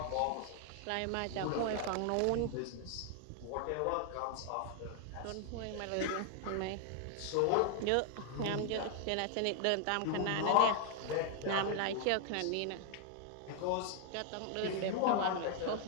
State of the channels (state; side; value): different; both; correlation 0.00